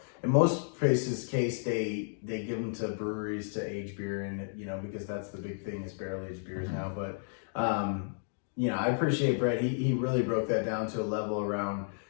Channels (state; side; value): silent; right; digital silence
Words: In most places case, they give them to breweries to age beer in, you know, because that's the big thing is barrel aged beers now. But you know, I appreciate Brett. He really broke that down to a level around,